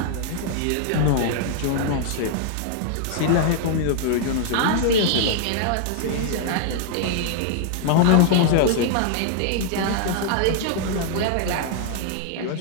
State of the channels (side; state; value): both; different; correlation 0.00